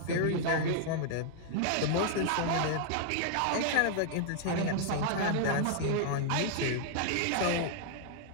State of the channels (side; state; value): both; different; correlation -0.01